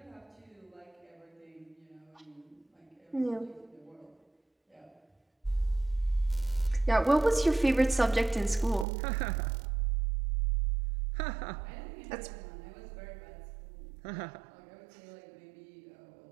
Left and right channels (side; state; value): left; drops out; at 8.8 s